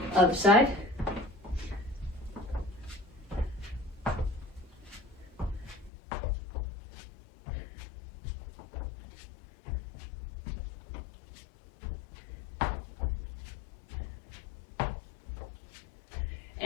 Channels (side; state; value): right; drops out; at 5.9 s